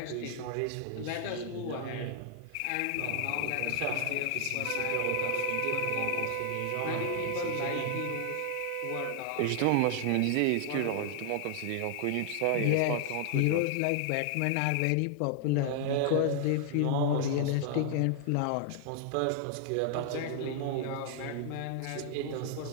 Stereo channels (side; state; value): both; different; correlation 0.00